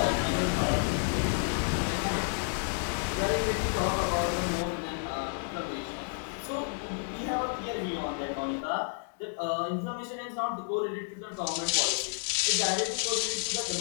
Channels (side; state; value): right; silent; digital silence